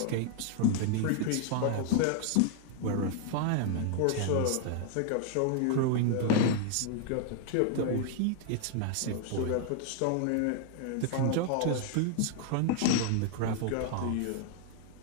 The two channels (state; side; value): different; both; correlation 0.00